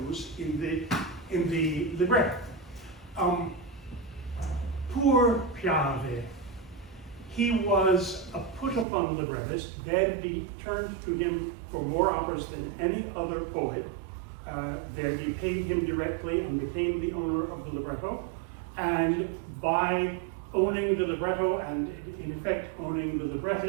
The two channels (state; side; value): drops out; left; at 8.8 s